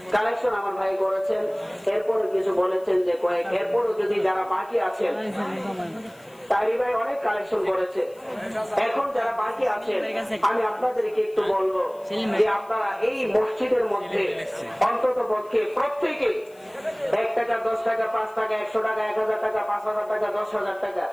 কালেকশন আমার ভাই করেছেন, এরপরে কিছু বলেছেন যে কয়েক, এরপরে যদি যারা বাকি আছেন, তারি ভাই অনেক কালেকশন করেছে, এখন যারা বাকি আছেন আমি আপনাদেরকে একটু বলবো যে আপনারা এই মসজিদের মধ্যে অন্তত পক্ষে প্রত্যেকে 1 টাকা, 10 টাকা, 5 টাকা, 100 টাকা, 1000 টাকা, 5000 টাকা, 10,000 টাকা,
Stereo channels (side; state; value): left; noise; hiss, 29 dB below the sound